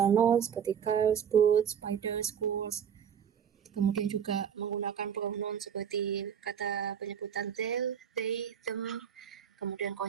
nouns seperti cars, boots, spiders, schools. Kemudian juga menggunakan pronoun seperti kata penyebutan they, them. Kemudian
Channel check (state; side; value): quieter; left; 8.2 dB